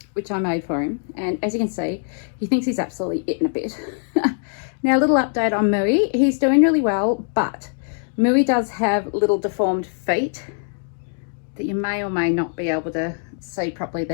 which I made for him, and as you can see, he thinks he's absolutely eaten a bit. Now, a little update on Mooey. He's doing really well, but Mooey does have little deformed feet that you may or may not be able to see properly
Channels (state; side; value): silent; right; digital silence